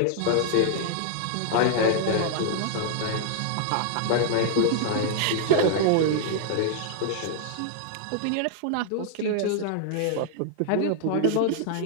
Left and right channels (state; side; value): different; both; correlation -0.01